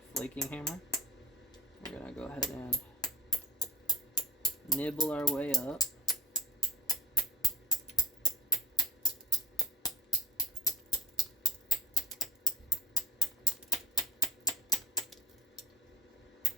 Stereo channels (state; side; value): normal; both; correlation 0.43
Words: flaking hammer. We're gonna go ahead and nibble our way up.